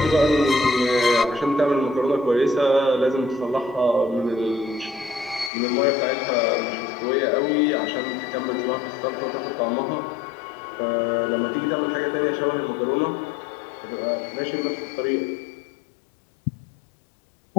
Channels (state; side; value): drops out; right; at 5.5 s